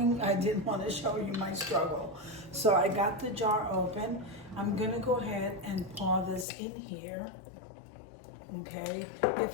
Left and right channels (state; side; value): drops out; right; at 6.5 s